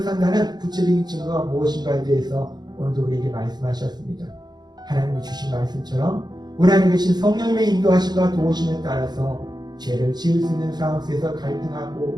산다는 구체적인 증거가 무엇인가에 대해서 오늘도 우리에게 말씀하셨습니다. 하나님이 주신 말씀처럼 우리 안에 계신 성령님의 인도하심과 도우심에 따라서 죄를 지을 수 있는 상황 속에서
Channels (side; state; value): left; late; 0.20 ms